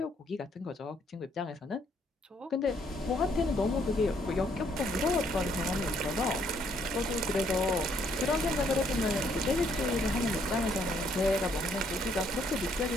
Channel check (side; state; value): both; normal; correlation 0.68